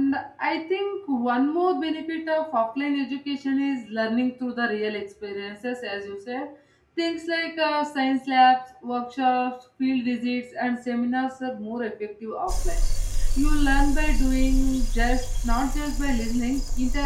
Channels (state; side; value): identical; both; correlation 1.00